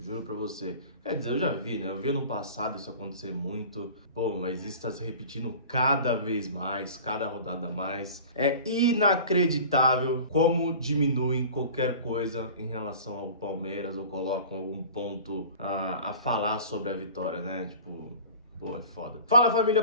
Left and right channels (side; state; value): both; inverted; correlation -0.40